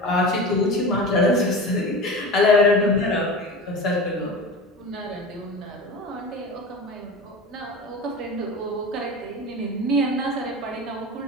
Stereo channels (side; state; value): both; normal; correlation 0.30